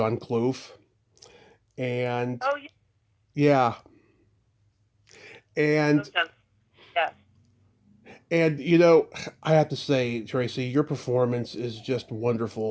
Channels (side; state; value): both; identical; correlation 1.00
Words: Clough, and Oh, yeah, and yeah. and I have to say, Tracy, your performance is just